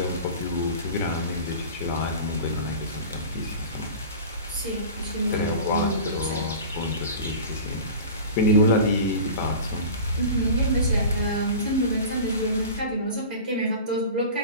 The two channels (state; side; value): inverted; both; correlation -0.36